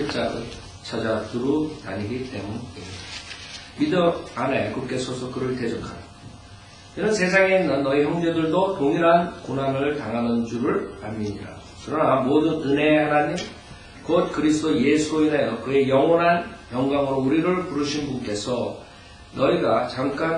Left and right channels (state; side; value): identical; both; correlation 1.00